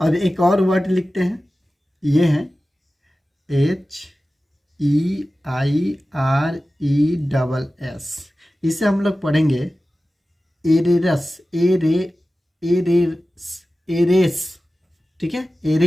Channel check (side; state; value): both; normal; correlation 0.95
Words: एक और वर्ड लिखते हैं, ये है HEIRESS। इसे हम लोग पढ़ेंगे एरेरस। एरेस। एरेस। ठीक है,